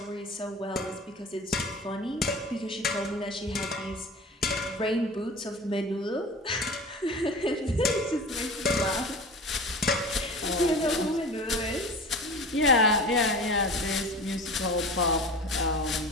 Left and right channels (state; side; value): normal; both; correlation 0.36